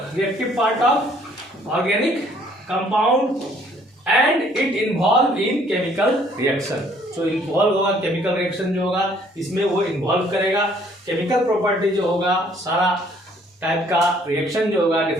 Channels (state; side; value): normal; both; correlation 0.61